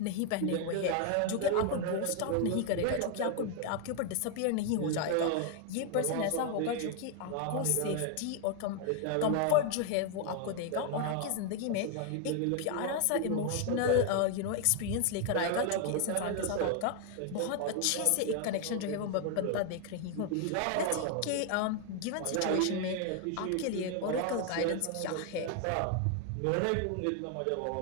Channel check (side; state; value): both; different; correlation 0.00